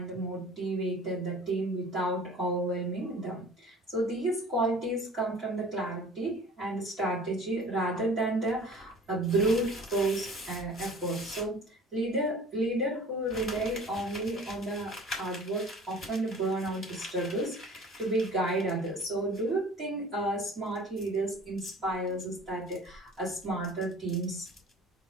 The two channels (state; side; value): normal; both; correlation 0.45